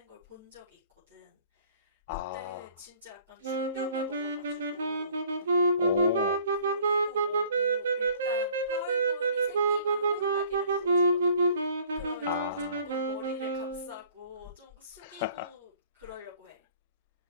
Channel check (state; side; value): inverted; both; correlation -0.54